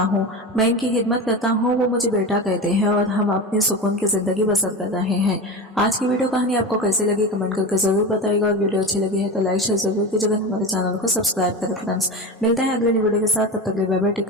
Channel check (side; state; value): both; normal; correlation 0.25